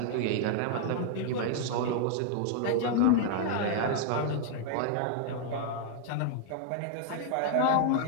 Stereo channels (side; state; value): both; different; correlation 0.00